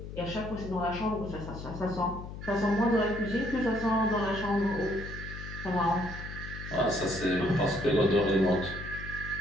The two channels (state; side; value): noise; left; hum, 10 dB below the sound